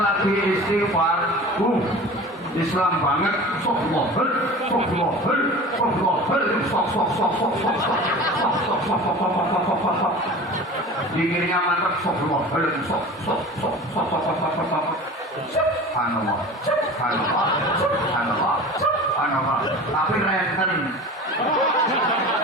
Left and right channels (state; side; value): normal; both; correlation 0.37